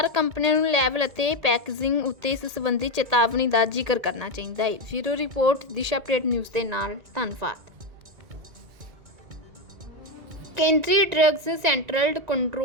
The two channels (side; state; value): left; late; 1.9 ms